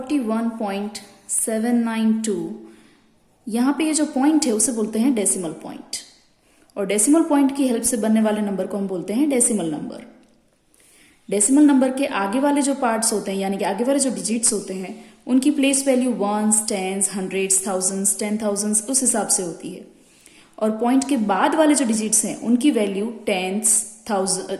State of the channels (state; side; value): identical; both; correlation 1.00